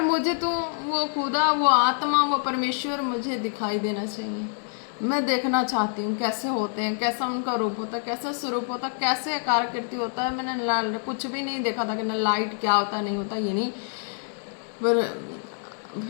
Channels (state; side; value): silent; right; 61 dB below the other